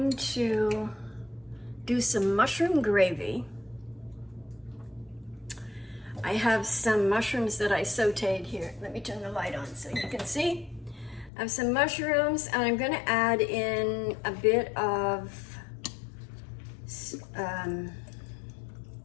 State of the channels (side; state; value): right; drops out; at 11.3 s